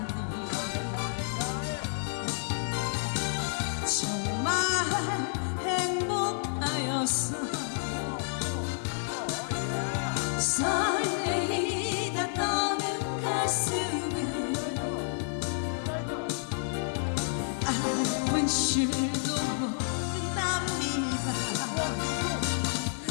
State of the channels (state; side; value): silent; right; digital silence